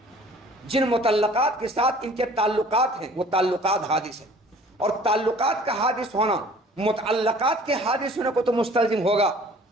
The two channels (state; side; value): normal; both; correlation 0.50